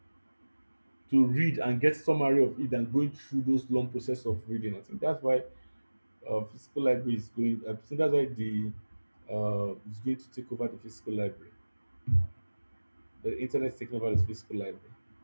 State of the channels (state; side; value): inverted; both; correlation -1.00